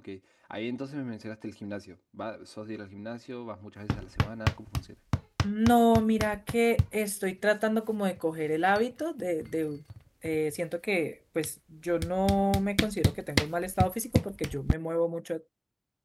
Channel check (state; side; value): identical; both; correlation 1.00